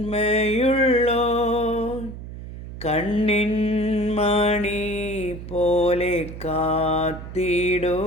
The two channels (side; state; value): right; noise; hum, 11 dB below the sound